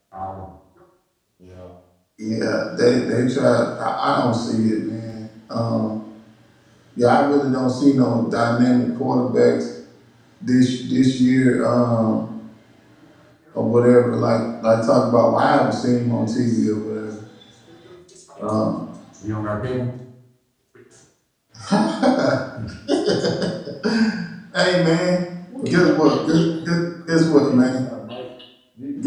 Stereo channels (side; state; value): both; identical; correlation 1.00